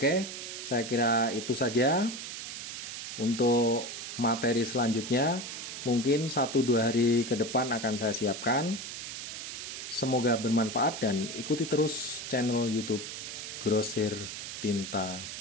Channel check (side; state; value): right; noise; hiss, 8 dB below the sound